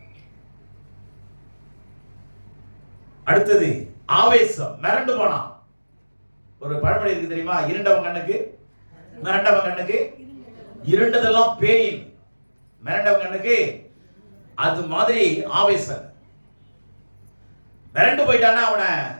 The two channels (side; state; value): both; inverted; correlation -1.00